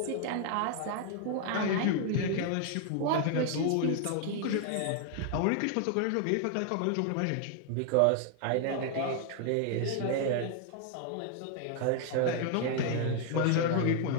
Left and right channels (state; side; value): different; both; correlation 0.00